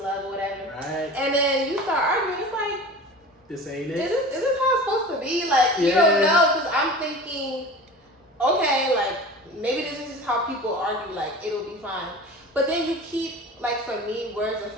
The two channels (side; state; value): both; normal; correlation 0.36